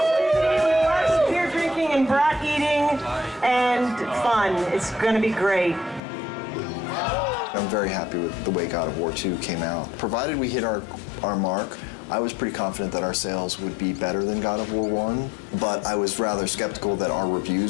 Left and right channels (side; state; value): right; drops out; at 6.0 s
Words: Beer drinking and brat eating and fun. It's going to be great. I'm very happy with the way God of War 2 came out. Provided we hit our mark, I was pretty confident that our sales would be better than God of War 1, but I was rather skeptical that our